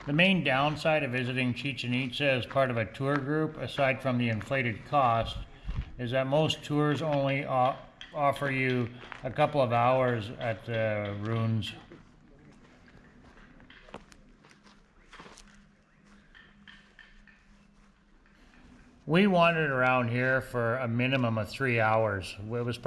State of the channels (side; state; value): both; identical; correlation 1.00